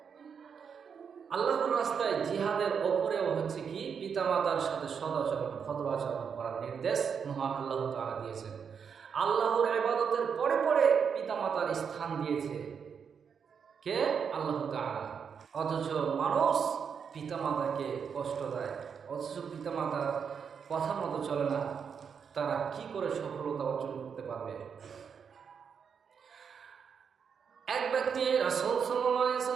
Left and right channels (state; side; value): quieter; left; 6.7 dB